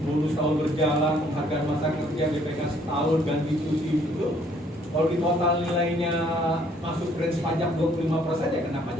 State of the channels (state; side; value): normal; both; correlation 0.63